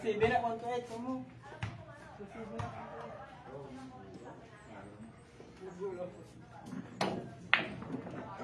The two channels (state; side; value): identical; both; correlation 1.00